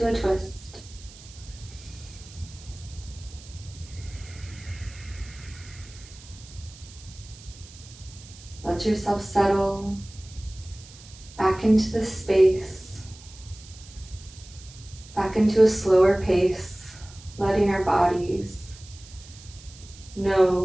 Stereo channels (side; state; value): right; noise; hiss, 20 dB below the sound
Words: a twist. Let yourself settle back into the space, back into a slower pace, letting our bodies